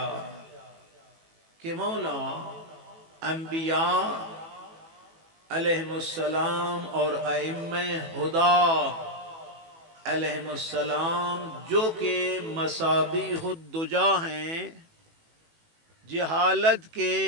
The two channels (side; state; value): left; late; 18 ms